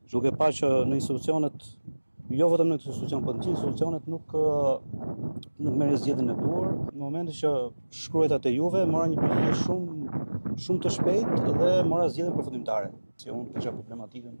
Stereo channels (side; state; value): both; inverted; correlation -1.00